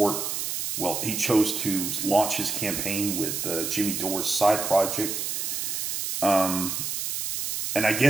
he chose to launch his campaign with Jimmy Dore's side project. And I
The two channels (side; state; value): right; noise; hiss, 2 dB below the sound